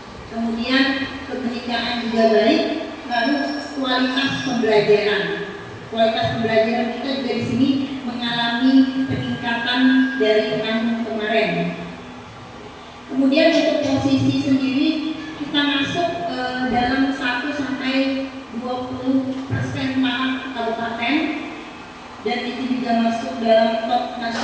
Kemudian kebenekaan juga baik. Lalu kualitas pembelajaran kita juga di sini mengalami peningkatan dari tahun kemarin. Kemudian untuk posisi sendiri kita masuk dalam 1-20% tahap kabupaten, dan itu juga masuk dalam top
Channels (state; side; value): identical; both; correlation 1.00